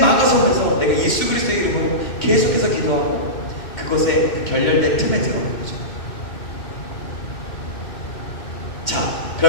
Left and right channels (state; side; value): late; right; 2.6 ms